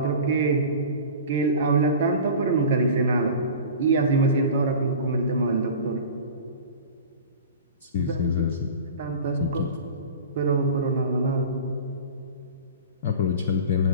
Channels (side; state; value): both; inverted; correlation -0.37